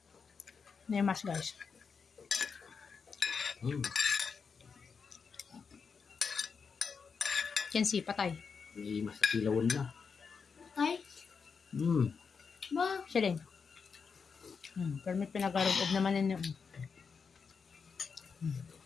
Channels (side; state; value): right; quieter; 5.7 dB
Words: Nemas, guys. Kensi, patay. May masakilawan na. Ay, ba? Siya din. Pero may pinagarugob naman ninyo.